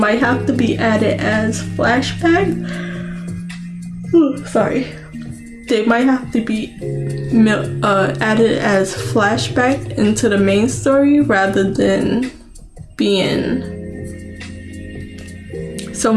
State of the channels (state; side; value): identical; both; correlation 1.00